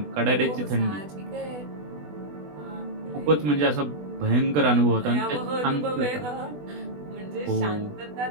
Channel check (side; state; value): left; late; 20 ms